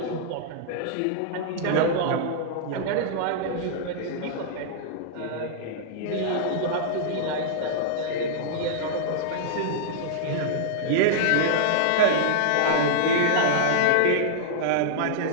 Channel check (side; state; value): both; different; correlation -0.02